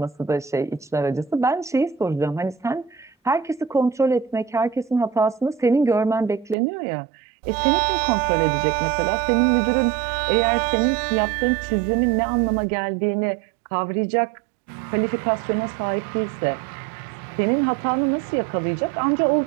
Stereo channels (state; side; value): drops out; left; at 6.6 s